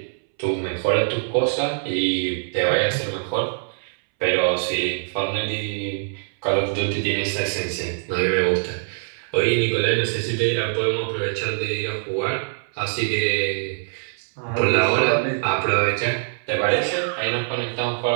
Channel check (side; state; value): left; silent; 63 dB below the other